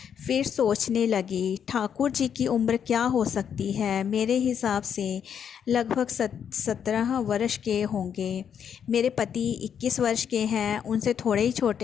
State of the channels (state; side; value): quieter; right; 8.1 dB